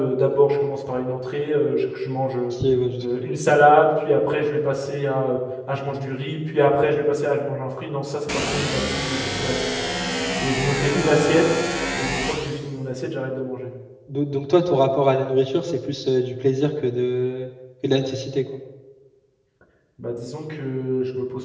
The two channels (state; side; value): identical; both; correlation 1.00